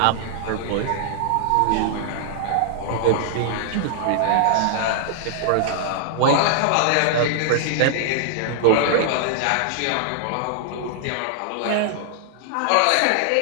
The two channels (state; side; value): different; both; correlation -0.01